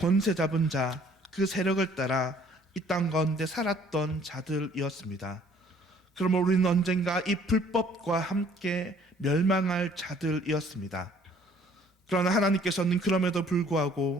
잡은 자, 그 세력을 따라 이 땅 가운데 살았던 자들이었습니다. 그러므로 우리는 언젠가 이 불법과 함께 멸망할 자들이었습니다. 그러나 하나님께서는 그럼에도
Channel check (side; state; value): both; normal; correlation 0.58